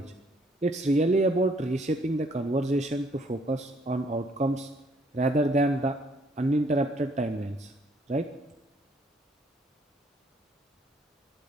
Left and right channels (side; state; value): both; normal; correlation 0.65